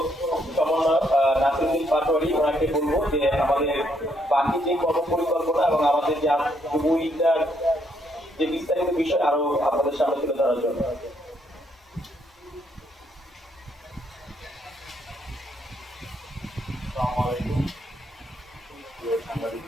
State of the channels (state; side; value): normal; both; correlation 0.73